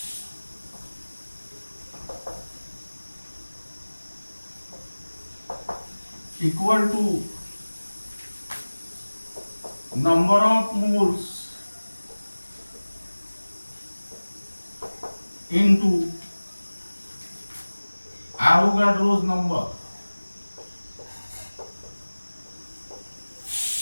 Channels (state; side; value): inverted; both; correlation -1.00